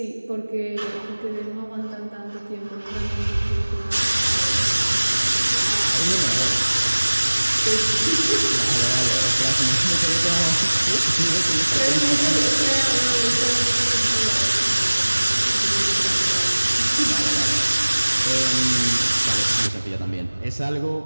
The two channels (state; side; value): inverted; both; correlation -1.00